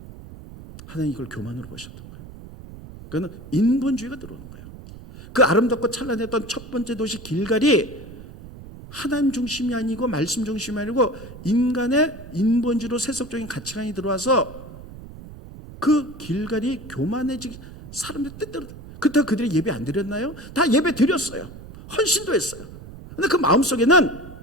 하나님 이걸 교만으로 보셨던 거예요. 그거는 인본주의가 들어오는 거예요. 그 아름답고 찬란했던 첫 번째 도시 길갈이 하나님 중심이 아니고 말씀 중심이 아니고 인간의 인본주의로 세속적인 가치관이 들어와서 그 길갈이 교만해지기, 사람들 뜻대로. 그렇다고 그들이 예배 안 드렸나요? 다 예배 드렸어요. 헌신도 했어요. 그런데 그 마음속에는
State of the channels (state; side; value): noise; right; rumble, 15 dB below the sound